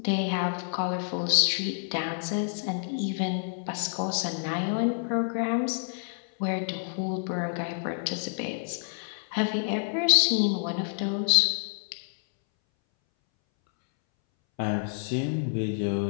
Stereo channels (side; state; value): right; silent; 59 dB below the other